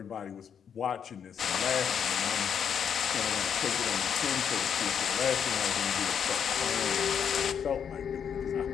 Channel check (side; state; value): right; quieter; 7.8 dB